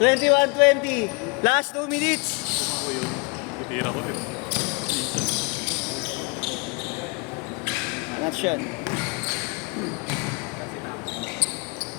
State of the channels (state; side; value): quieter; right; 30.1 dB